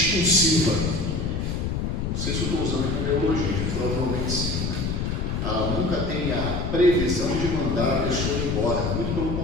Não sei se eu estou usando como neologia, provavelmente sim, né? Ela nunca tem a previsão de mandar a pessoa embora, muito pelo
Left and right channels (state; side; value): noise; left; rumble, 1 dB below the sound